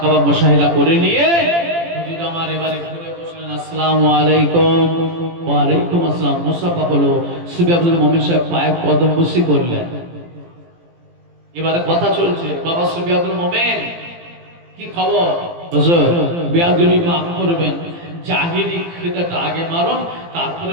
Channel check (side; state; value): left; late; 18 ms